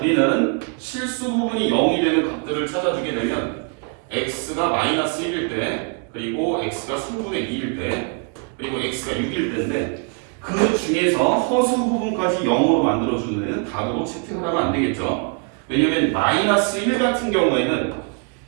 실수 부분이 0이 되는 값들을 찾아주게 되면 x가 마이너스 1일 때, 그리고 x가 3분의 2일 때, 그리고 x가 6일 때인데 그 중에서 허수 부분까지 0으로 만들어주는 애는 답으로 채택을 하면 안 되겠죠. 왜냐면 마이너스 1 같은 경우에는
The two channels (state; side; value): quieter; left; 37.8 dB